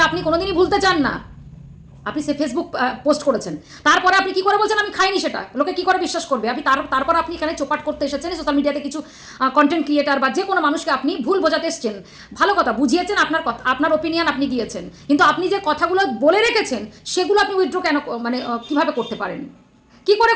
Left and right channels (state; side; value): identical; both; correlation 1.00